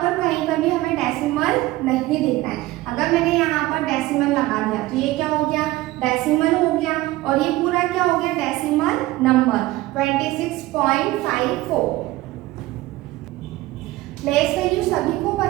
कहीं पर भी हमें डेसिमल नहीं दिख रहा है। अगर मैंने यहाँ पर डेसिमल लगा दिया तो ये क्या हो गया? डेसिमल हो गया और ये पूरा क्या हो गया? Decimal number 26.54। प्लेस वैल्यू सभी को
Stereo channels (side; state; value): left; quieter; 17.9 dB